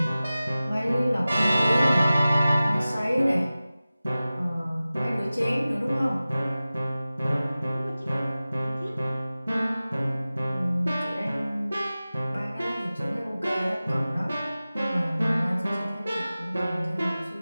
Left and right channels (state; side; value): inverted; both; correlation -0.97